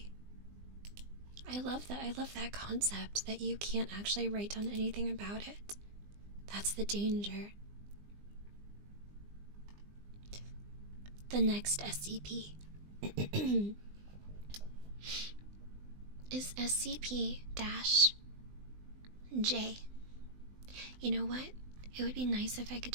I love that. I love that concept that you can't actually write down anything about it. That's the danger. The next SCP is SCP-J. You know what? It would be nice if I could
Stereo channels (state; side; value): late; left; 20 ms